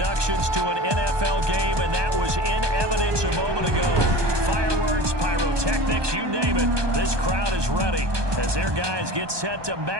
to an NFL game, and that was in evidence a moment ago. Fireworks, pyrotechnics, you name it. This crowd is ready as their guys get set to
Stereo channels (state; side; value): late; left; 1.2 ms